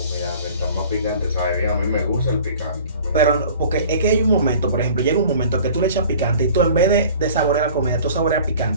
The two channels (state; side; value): inverted; both; correlation -0.47